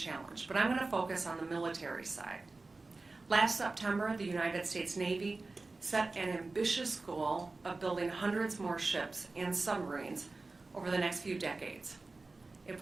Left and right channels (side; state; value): left; quieter; 3.5 dB